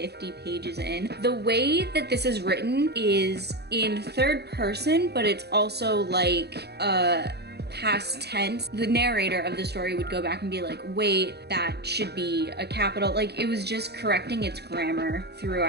pages in. The way that this is written is in third person, but it's also like past tense. The narrator of the story would go back and be like, wait, that should be a capital. Like, it was just correcting its grammar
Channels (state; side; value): late; left; 0.48 ms